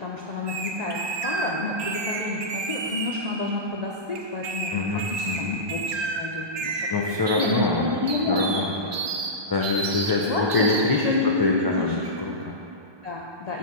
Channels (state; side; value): late; left; 1.2 ms